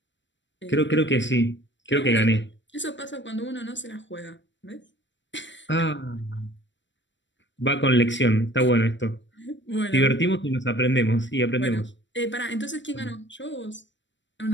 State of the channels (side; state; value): right; late; 0.53 ms